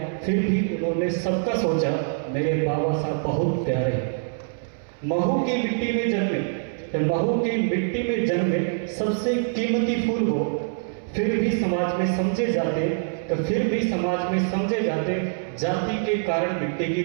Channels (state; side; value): silent; left; 61 dB below the other